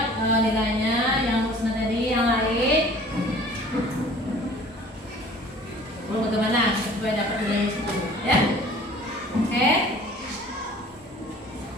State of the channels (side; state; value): both; normal; correlation 0.49